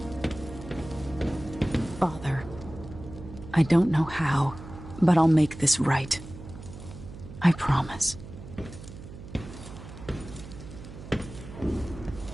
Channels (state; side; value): noise; right; hum, 14 dB below the sound